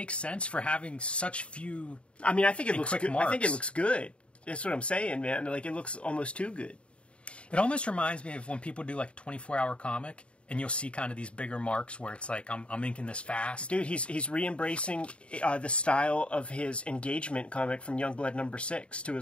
sense for having such few. I mean, I think it looks good. Marks. I think it looks good. That's what I'm saying, man. Like, it looks almost too good. It almost reminds me of when people do like a 24-hour comic, and you'll see kind of these bigger marks where it's like, I'm inking this fast. Dude, he's re-embracing the style of his engagement comic from Youngblood #6 to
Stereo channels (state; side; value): late; right; 0.059 ms